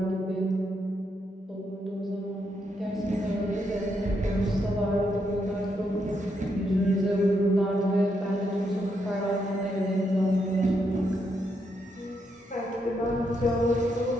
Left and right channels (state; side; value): normal; both; correlation 0.79